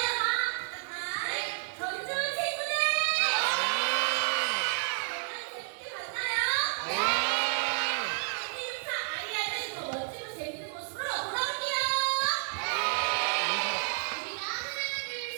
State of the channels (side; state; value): left; silent; digital silence